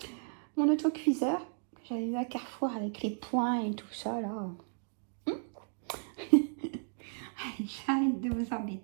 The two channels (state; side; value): silent; left; 55 dB below the other